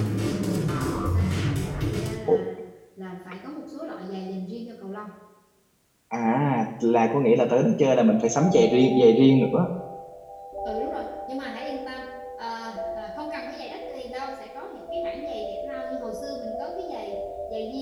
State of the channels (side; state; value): both; identical; correlation 1.00